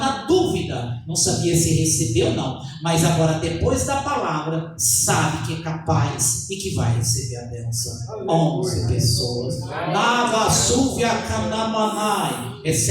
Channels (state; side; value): identical; both; correlation 1.00